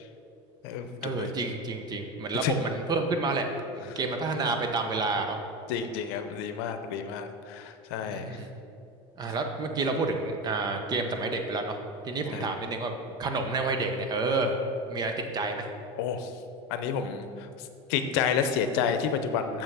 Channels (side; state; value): both; normal; correlation 0.19